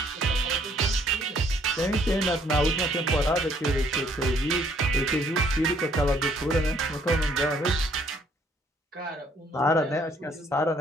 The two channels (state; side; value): normal; both; correlation 0.64